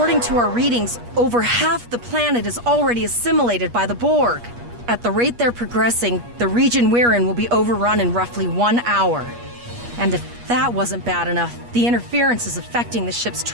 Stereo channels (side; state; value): left; late; 8.4 ms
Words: to our readings, over half the planet is already assimilated by the Borg. At the rate they're progressing, the region we're in will be overrun in roughly 1 hour. And if that wasn't bad enough, the interference is affecting the ship's